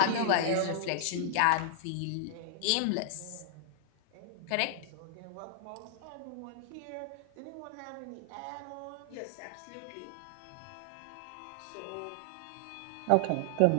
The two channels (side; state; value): both; different; correlation -0.01